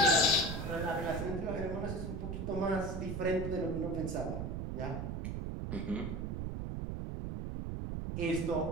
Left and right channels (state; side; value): noise; right; rumble, 4 dB below the sound